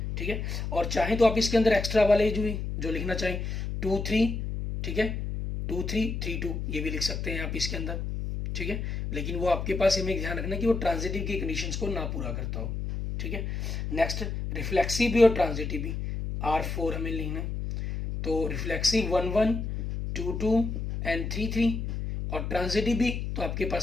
ठीक है और चाहे तो आप इसके अंदर एक्स्ट्रा वाले जो लिखना चाहें 2 3। ठीक है 2 3 3 2 ये भी लिख सकते हैं आप इसके अंदर। ठीक है लेकिन वो आपके पास हमें ध्यान रखना कि वो ट्रांजिटिव की कंडीशंस को ना पूरा करता हो। ठीक है नेक्स्ट रिफ्लेक्सिव भी और ट्रांजिटिव भी R4 हमें लिखना है, तो रिफ्लेक्सिव 1 1 2 2 एंड 3 3 और ट्रांजिटिव भी तो आपके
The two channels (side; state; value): left; noise; hum, 4 dB below the sound